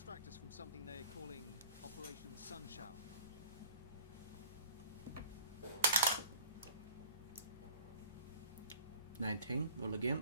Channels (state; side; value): inverted; both; correlation -0.45